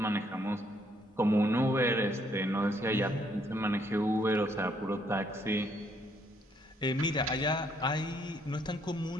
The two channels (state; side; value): normal; both; correlation 0.69